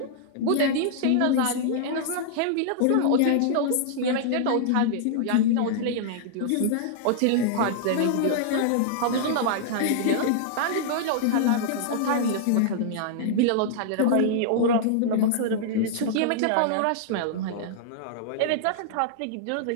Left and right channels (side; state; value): both; different; correlation -0.01